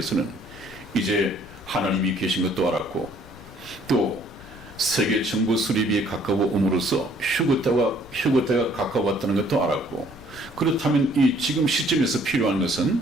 이제 하나님이 계신 것도 알았고, 또 세계 정부 수립이 가까워옴으로써 휴거때가 가까웠다는 것도 알았고, 그렇다면 이 지금 시점에서 필요한 것은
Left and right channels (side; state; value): left; noise; rumble, 20 dB below the sound